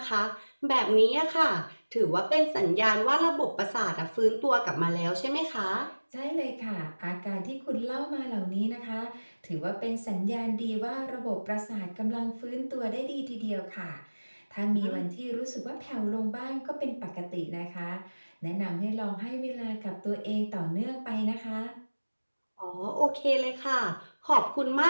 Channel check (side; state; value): both; inverted; correlation -1.00